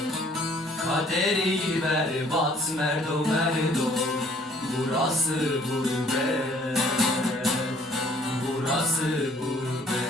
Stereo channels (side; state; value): both; normal; correlation 0.59